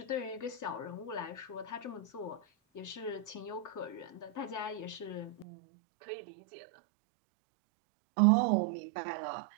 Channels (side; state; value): left; drops out; at 5.5 s